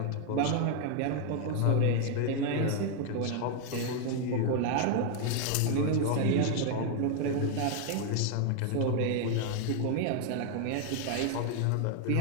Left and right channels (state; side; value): different; both; correlation 0.00